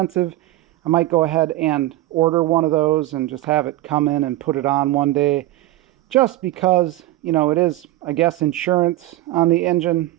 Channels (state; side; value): quieter; left; 16.2 dB